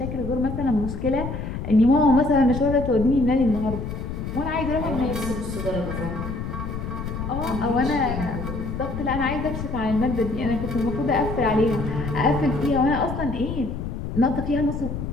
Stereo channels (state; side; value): noise; left; rumble, 5 dB below the sound